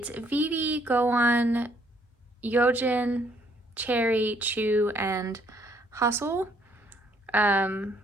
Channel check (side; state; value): both; normal; correlation 0.67